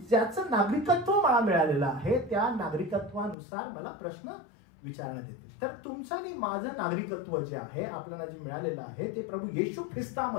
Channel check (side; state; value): right; drops out; at 3.4 s